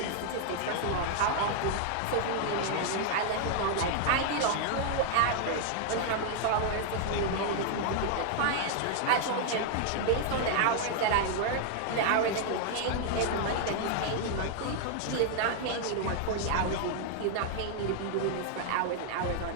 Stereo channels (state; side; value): different; both; correlation 0.00